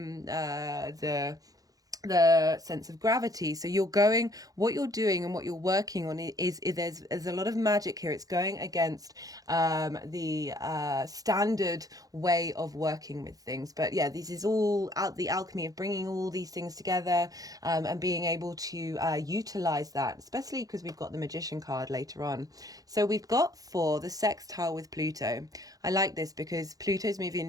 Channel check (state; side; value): late; left; 0.17 ms